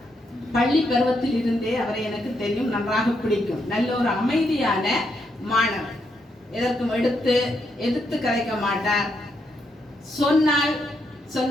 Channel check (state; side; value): normal; both; correlation 0.79